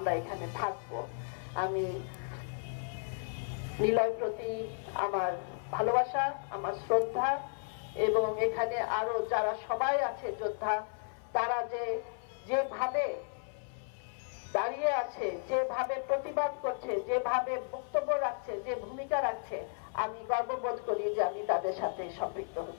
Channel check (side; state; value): right; silent; 55 dB below the other